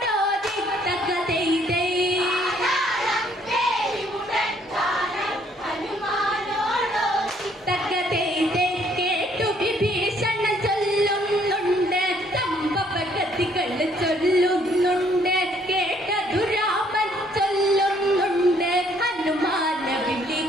തക്കതെയ്തേ തക്കതെയ്തേ കേട്ടു വിഭീഷണ ചൊല്ലുന്നുണ്ട് സംഭവഗതികൾ ചൊല്ലുന്നുണ്ട് കേട്ടതു രാമൻ ചൊല്ലുന്നുണ്ട് ഹനുമാന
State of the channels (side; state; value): both; normal; correlation 0.65